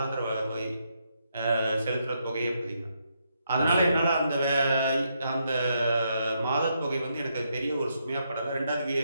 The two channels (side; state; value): both; inverted; correlation -0.78